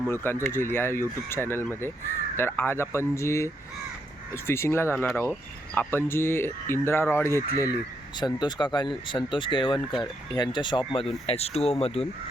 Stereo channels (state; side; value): normal; both; correlation 0.78